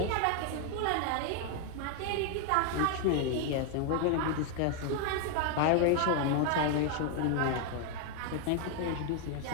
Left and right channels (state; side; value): different; both; correlation 0.00